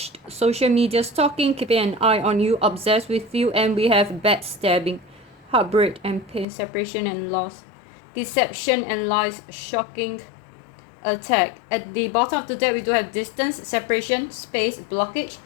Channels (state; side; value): drops out; right; at 6.5 s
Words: social media stalking, keeping an eye on you, obsessed with you, and we have backstabbing, heartbreak and pain, separation and loss, deception and lies, shocking, attack. At the bottom of the deck, we do have distance, separation, space, blockage.